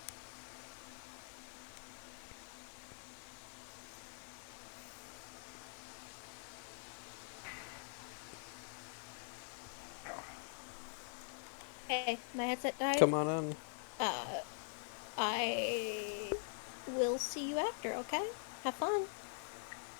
Hey, my headset died. Come on in. I will see you after, okay? Have fun.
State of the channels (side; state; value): right; silent; digital silence